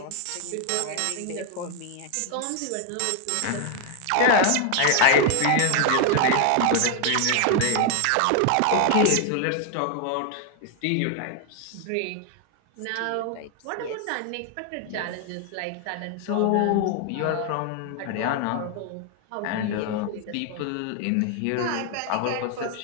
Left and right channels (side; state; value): both; different; correlation 0.00